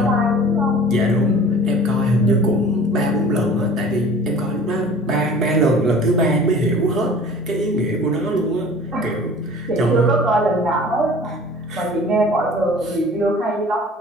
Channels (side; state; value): both; normal; correlation 0.44